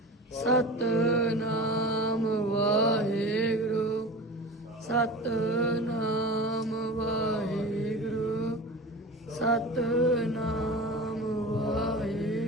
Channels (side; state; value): both; normal; correlation 0.33